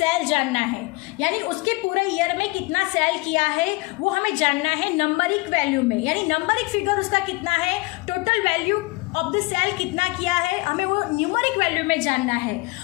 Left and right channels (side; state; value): right; quieter; 24.5 dB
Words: जानना है, यानी उसके पूरे ईयर में कितना सेल किया है वो हमें जानना है नंबरिक वैल्यू में, यानी नंबरिक फिगर उसका कितना है, total value of the sale कितना किया है, हमें वो न्यूमरिक वैल्यू में जानना है.